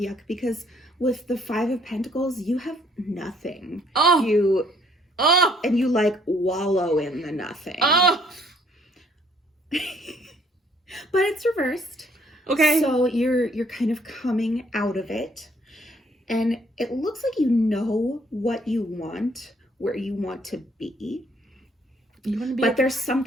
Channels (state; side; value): normal; both; correlation 0.64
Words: because with the 5 of Pentacles, you have nothing. Oh. And you like wallow in the nothing. Oh. But it's reversed. Okay. So you're kind of coming out of it. And it looks like you know what you want, where you want to be. You want to be, but there's